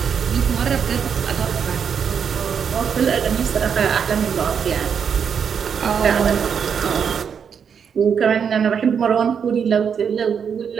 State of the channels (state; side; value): quieter; left; 7.1 dB